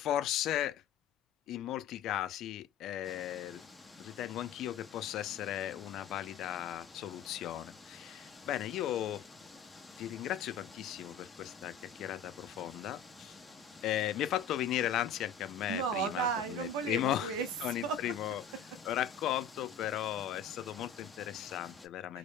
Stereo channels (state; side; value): quieter; right; 6.7 dB